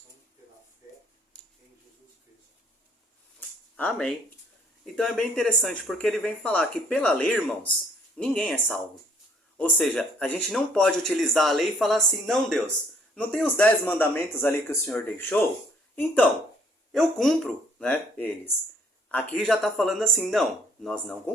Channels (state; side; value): normal; both; correlation 0.62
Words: pela fé em Jesus Cristo. Amém. Então é bem interessante, porque ele vem falar que pela lei, irmãos, ninguém é salvo. Ou seja, a gente não pode utilizar a lei e falar assim, não, Deus, não tem os 10 mandamentos ali que o Senhor deixou? Então, eu cumpro, né, eles. Aqui já está falando assim, não, nós não